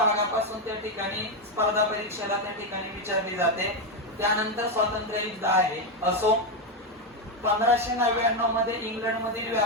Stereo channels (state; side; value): normal; both; correlation 0.07